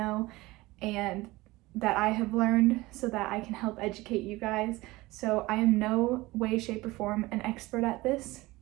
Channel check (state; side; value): quieter; left; 20.3 dB